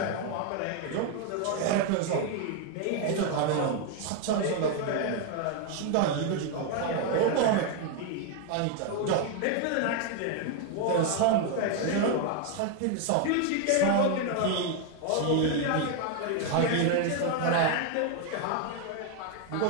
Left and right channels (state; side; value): different; both; correlation 0.01